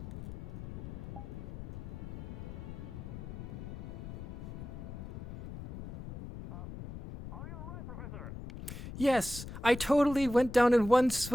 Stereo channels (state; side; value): noise; left; rumble, 9 dB below the sound